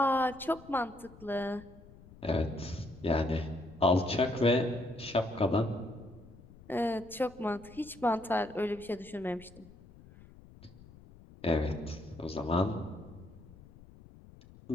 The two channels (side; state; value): left; noise; rumble, 21 dB below the sound